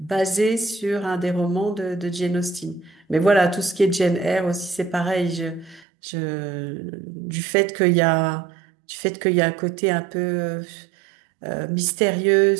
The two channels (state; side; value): drops out; left; at 5.9 s